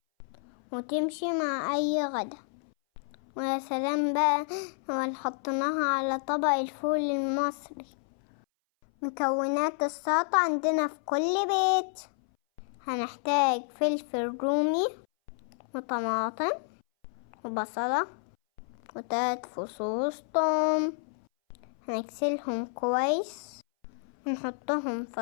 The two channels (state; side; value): silent; right; 58 dB below the other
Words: وتمشي مع اي غدا. ويا سلام بقى لو حطيناها على طبق الفول المصري. مكونات السلطة عندنا في كل بيت: هنحتاج فلفل رومي وطماطم وبصلة و3 فصوص توم. هنغسلهم كويس ونحطهم